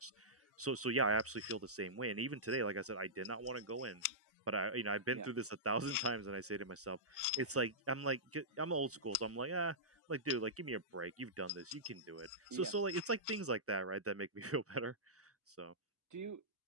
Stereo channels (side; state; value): both; normal; correlation -0.16